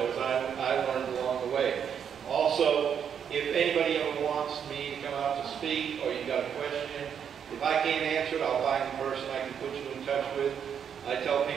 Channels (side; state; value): left; quieter; 7.9 dB